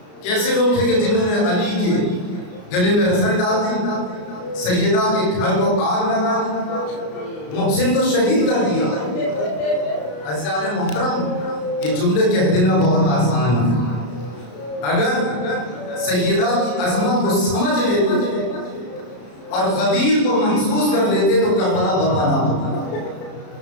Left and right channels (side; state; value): right; late; 33 ms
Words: کیسے لوگ تھے کہ جنہوں نے علی کے گلے میں رسن ڈال دی، سیدہ کے گھر کو آگ لگا دی، محسن کو شہید کر دیا. عزیزان محترم، یہ جملے کہہ دینا بہت آسان ہے. اگر سیدہ کی عظمت کو سمجھ لیتے اور غدیر کو محسوس کر لیتے تو کربلا برپا نہ ہوتا.